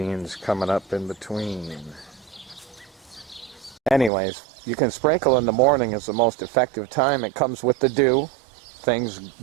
coming up in between. Anyways, you can sprinkle in the morning is the most effective time. It comes with the dew. Things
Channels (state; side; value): drops out; left; at 4.1 s